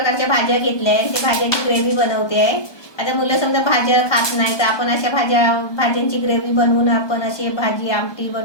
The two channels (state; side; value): late; right; 1.2 ms